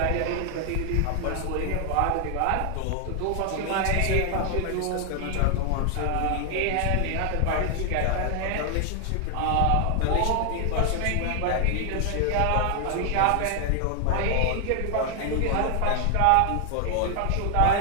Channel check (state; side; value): different; both; correlation 0.00